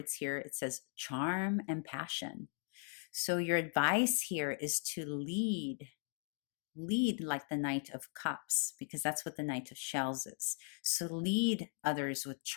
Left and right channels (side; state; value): right; silent; 52 dB below the other